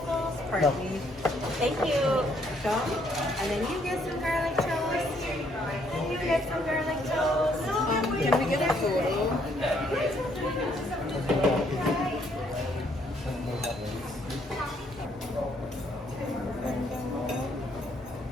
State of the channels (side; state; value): both; normal; correlation 0.69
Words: partly. Thank you. And then you get some garlic toast. You get some garlic toast. Can we get a photo?